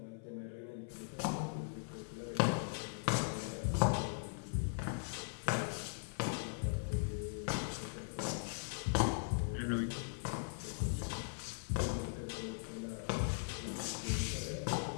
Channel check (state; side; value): silent; right; 51 dB below the other